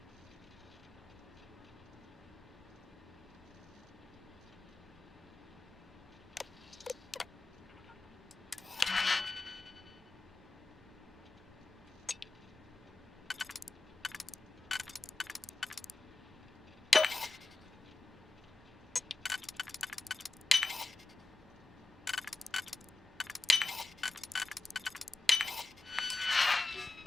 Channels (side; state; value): right; quieter; 3.3 dB